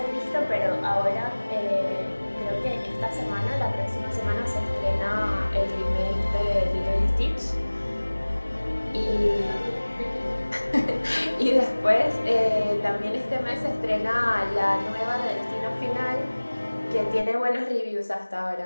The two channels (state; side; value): inverted; both; correlation -1.00